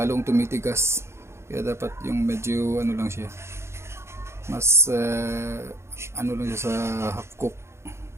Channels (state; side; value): late; left; 0.13 ms